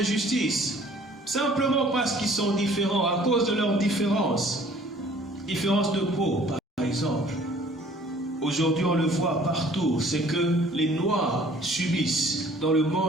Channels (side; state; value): both; normal; correlation 0.54